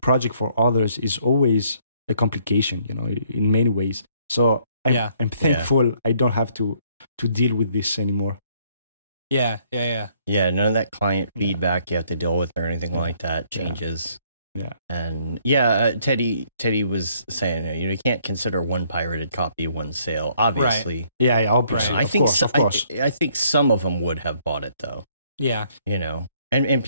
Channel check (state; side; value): inverted; both; correlation -0.66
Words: project for others is always a complication, in many ways. So I'm thankful I don't have to deal with this anymore. Yeah, none of that client feedback you have to deal with or anything like that changes. Yeah. And Teddy was saying, you can't consider one pirated copy one sale, obviously. Right. Yeah, obviously. Right. Of course. I think some of them would have bought it though. Yeah. And